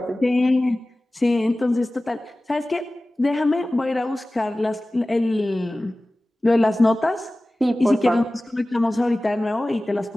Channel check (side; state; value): both; normal; correlation 0.97